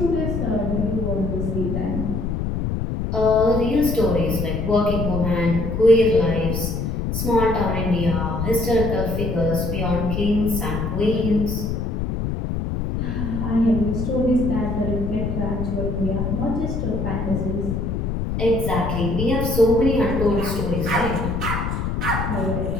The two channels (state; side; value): noise; left; rumble, 2 dB below the sound